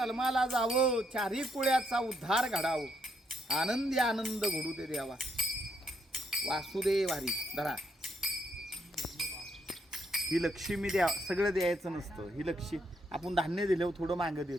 जावं. चारी कुळ्याचा उद्धार घडावं. आनंदी आनंद घडू दे देवा. वासुदेव हरी. धरा ही लक्ष्मी द्या. सगळं द्यायचं नसतं. ही लक्ष्मी आपण धान्य दिल्यावर थोडं मागं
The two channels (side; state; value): both; normal; correlation 0.76